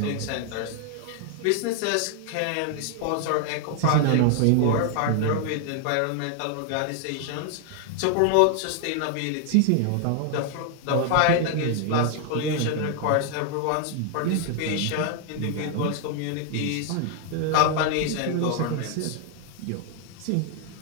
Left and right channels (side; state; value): both; different; correlation 0.00